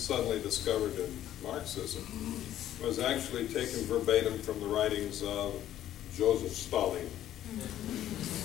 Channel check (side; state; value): right; quieter; 12.1 dB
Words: discovered in Marxism, was actually taken verbatim from the writings of Joseph Stalin.